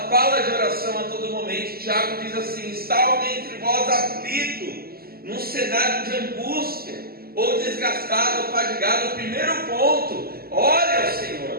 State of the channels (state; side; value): late; left; 0.44 ms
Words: fala de oração a todo momento. Tiago diz assim: está alguém entre vós aflito, num cenário de angústia, ou desgastado, ou fadigado? O primeiro ponto: ore ao